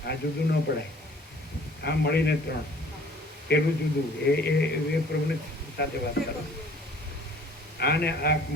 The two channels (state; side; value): normal; both; correlation 0.53